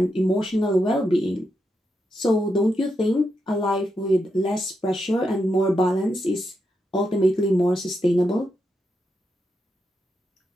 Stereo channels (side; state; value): both; normal; correlation 0.84